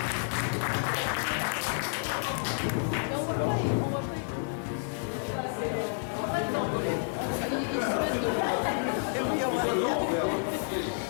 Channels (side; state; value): right; silent; digital silence